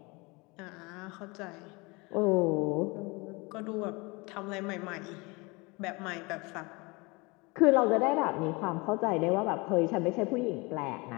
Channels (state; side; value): quieter; right; 26.5 dB